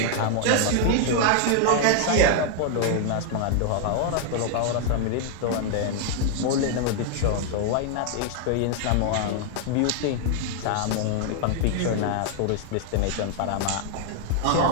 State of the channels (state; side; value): different; both; correlation 0.00